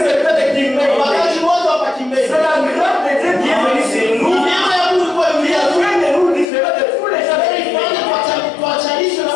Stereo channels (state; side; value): drops out; right; at 6.5 s